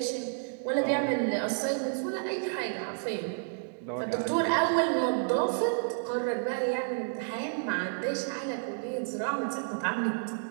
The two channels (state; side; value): silent; left; digital silence